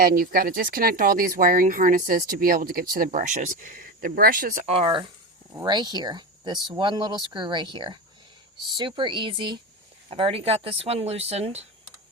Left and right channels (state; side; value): normal; both; correlation 0.21